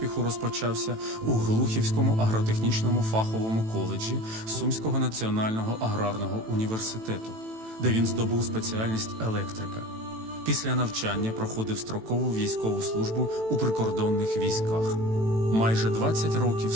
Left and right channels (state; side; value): late; left; 18 ms